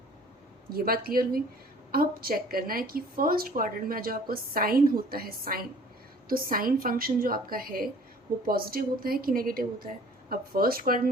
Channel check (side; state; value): both; normal; correlation 0.52